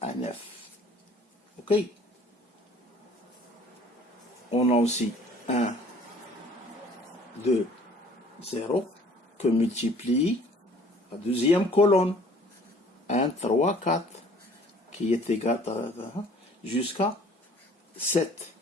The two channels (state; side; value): normal; both; correlation 0.53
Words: à 9. OK? On a aussi 1, 2, 0 que multiplie la deuxième colonne. 1, 3, 4 qui est égal à jusqu'à 7.